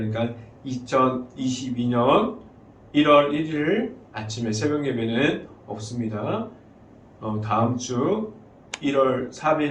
2022년 1월 1일 아침에 새벽 예배는 없습니다. 다음 주 1월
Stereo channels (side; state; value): both; identical; correlation 1.00